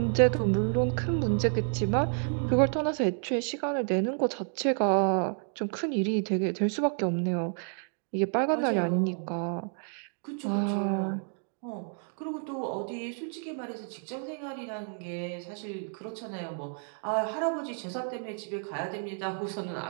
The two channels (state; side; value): silent; left; 58 dB below the other